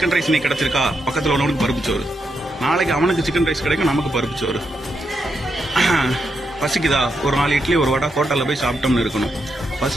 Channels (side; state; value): both; normal; correlation 0.83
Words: ரைஸ் நீ கிடைச்சிருக்கா, பக்கத்துல உள்ளவனுக்கு பருப்பு சோறு, நாளைக்கு அவனுக்கு சிக்கன் ரைஸ் கிடைக்கும், நமக்கு பருப்பு சோறு. பசிக்குதா, ஒரு 4 இட்லி ஒரு வடை ஹோட்டல்ல போய் சாப்பிட்டோம்னு இருக்கணும்.